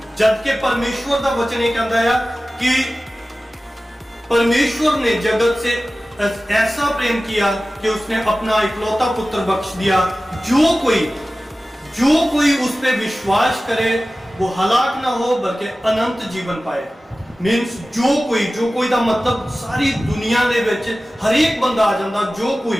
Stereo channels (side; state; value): both; normal; correlation 0.96